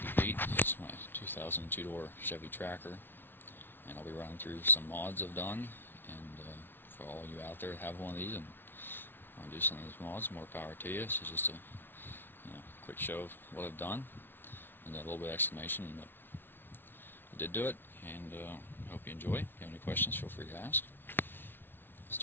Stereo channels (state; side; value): late; right; 0.10 ms